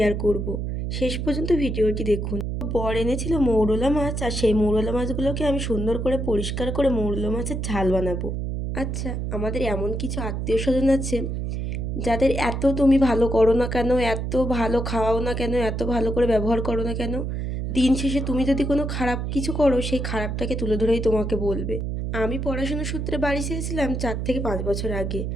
করব। শেষ পর্যন্ত ভিডিওটি দেখুন। বর এনেছিল মৌরলা মাছ, আর সেই মৌরলা মাছগুলোকে আমি সুন্দর করে পরিষ্কার করে মৌরলা মাছের ঝাল বানাবো। আচ্ছা, আমাদের এমন কিছু আত্মীয় স্বজন আছে যাদের এত তুমি ভালো করো না কেন, এত ভালো খাওয়াও না কেন, এত ভালো করে ব্যবহার করো না কেন, দিন শেষে তুমি যদি কোনো খারাপ কিছু করো সেই খারাপটাকে তুলে ধরেই তোমাকে বলবে। আমি পড়াশোনার সূত্রে বাড়ি এসেছিলাম 4 থেকে 5 বছর আগে।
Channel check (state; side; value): noise; right; hum, 3 dB below the sound